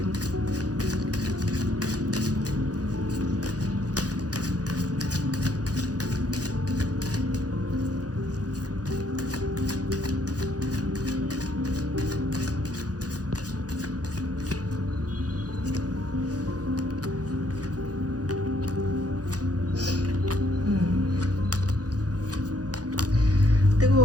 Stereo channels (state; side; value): late; left; 0.68 ms